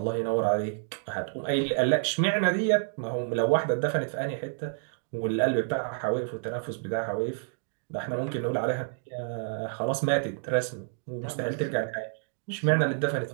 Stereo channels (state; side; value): silent; left; digital silence